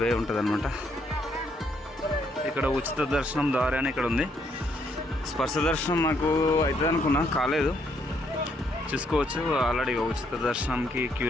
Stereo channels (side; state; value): both; normal; correlation 0.72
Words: వే ఉంటుంది అనమాట. ఇక్కడ ఉచిత దర్శనం దారి అని ఇక్కడ ఉంది. స్పర్శ దర్శనం నాకు అవుతుంది అనుకున్నా, కాలేదు. చూసుకోవచ్చు ఆల్రెడీ ఉచిత దర్శనంకి క్యూ